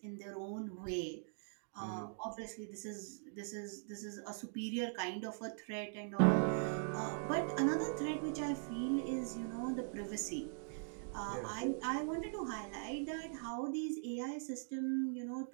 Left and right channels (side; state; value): left; silent; digital silence